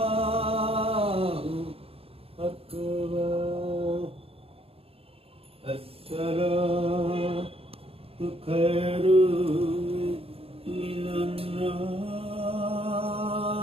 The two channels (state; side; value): late; left; 0.28 ms